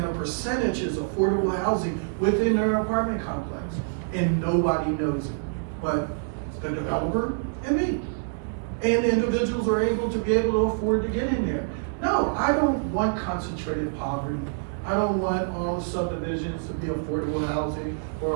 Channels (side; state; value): left; silent; digital silence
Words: a percentage is affordable housing within their apartment complex. And nobody knows it, but the developer and me. and individuals are able to afford to get in there. No, I don't want concentrated poverty. I don't want all the subdivisions to be affordable housing